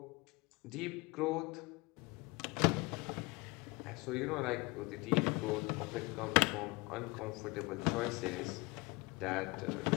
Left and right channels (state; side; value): quieter; right; 25.2 dB